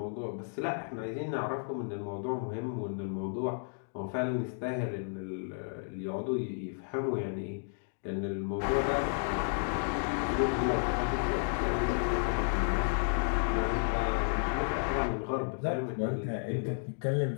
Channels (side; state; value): right; silent; digital silence